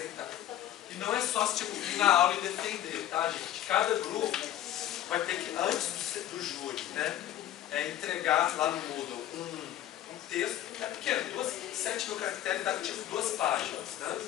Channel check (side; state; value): right; quieter; 12.4 dB